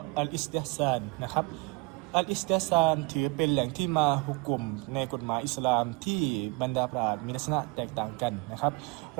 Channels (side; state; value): left; quieter; 27.2 dB